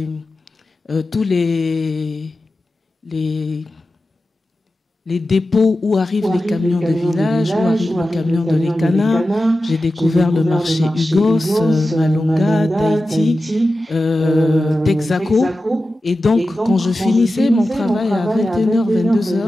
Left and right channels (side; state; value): both; normal; correlation 0.93